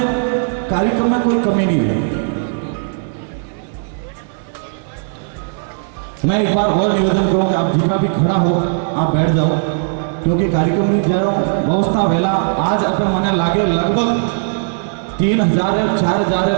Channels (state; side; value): silent; left; 68 dB below the other